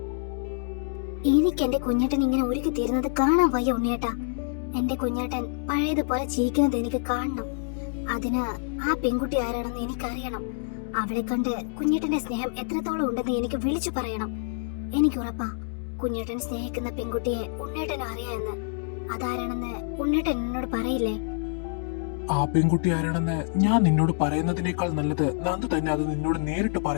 എനിക്ക് എന്റെ കുഞ്ഞേട്ടൻ ഇങ്ങനെ ഒരുക്കി തീരുന്നത് കാണാൻ വയ്യ ഉണ്ണിയേട്ടാ. എന്റെ കുഞ്ഞേട്ടൻ പഴയതുപോലെ ചിരിക്കുന്നത് എനിക്ക് കാണണം. അതിന് ആ പെൺകുട്ടി ആരാണെന്ന് എനിക്കറിയണം. അവളെ കണ്ട് കുഞ്ഞേട്ടന്റെ സ്നേഹം എത്രത്തോളം ഉണ്ടെന്ന് എനിക്ക് വിളിച്ചു പറയണം. എനിക്ക് ഉറപ്പാ കുഞ്ഞേട്ടൻ സ്നേഹിക്കുന്ന പെൺകുട്ടിയെ ഉണ്ണേട്ടനും അറിയാമെന്ന്. അതാരാണെന്ന് ഉണ്ണേട്ടൻ എന്നോട് പറയില്ലേ? ആ പെൺകുട്ടി ആരാണെന്ന് ഞാൻ നിന്നോട് പറയുന്നതിനേക്കാൾ നല്ലത് നന്ദു തന്നെ അത് നിന്നോട് നേരിട്ട്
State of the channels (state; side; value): silent; right; digital silence